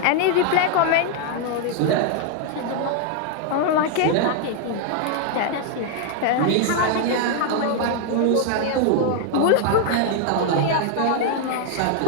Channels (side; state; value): both; different; correlation 0.00